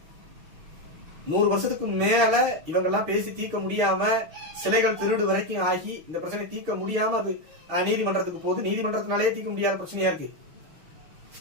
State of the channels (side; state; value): left; late; 6.4 ms